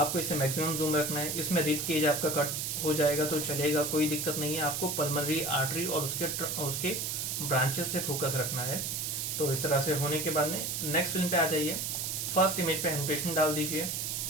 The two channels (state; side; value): noise; right; hiss, 2 dB below the sound